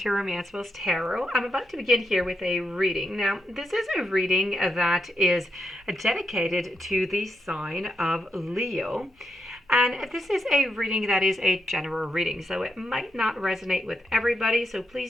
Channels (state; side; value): normal; both; correlation 0.83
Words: Romancefull's Tarot. I'm about to begin here with a reading. Now, this is a reading that is dedicated to the sign of Leo. And this is a reading that is a general reading, so it might not resonate with everybody, so